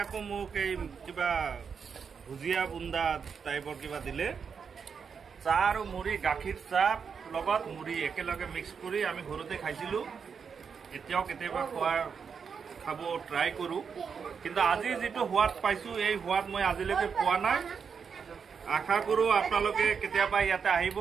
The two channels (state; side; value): quieter; left; 6.3 dB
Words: আকৌ মোক এই কিবা ভুজিয়া বুন্দা টাইপৰ কিবা দিলে। চাহ আৰু মুড়ি, গাখীৰ চাহ লগত মুড়ি একেলগে মিক্স কৰি আমি ঘৰতে খাইছিলোঁ। এতিয়াও কেতিয়াবা খাব ট্ৰাই কৰোঁ, কিন্তু আজি যিটো সোৱাদ পাইছোঁ এই সোৱাদ মই আজিলৈকে পোৱা নাই। আশা কৰোঁ আপোনালোকে কেতিয়াবা ইয়াতে আহিব,